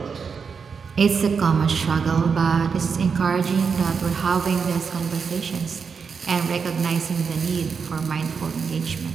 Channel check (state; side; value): quieter; left; 5.8 dB